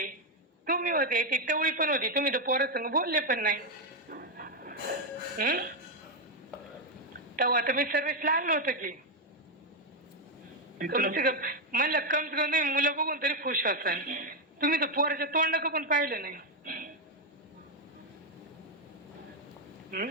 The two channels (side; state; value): both; normal; correlation 0.03